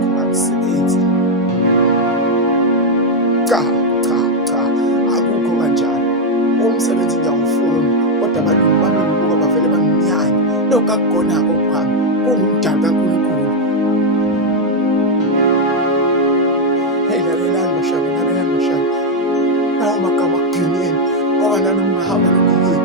kangisebenzi. Cha, cha, cha, akukho kanjalo. Umsebenzi ngiyawufuna, kodwa abalungu bami ngibuka bavele banginyanye. Lokhu akukhona-ko kwami, kuwumdalo kaNkulunkulu. Hey, lalelani bashaka, lalelani bashaka. Lawo magama akugcineni, ngoba nami ungahamba noma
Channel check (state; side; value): normal; both; correlation 0.02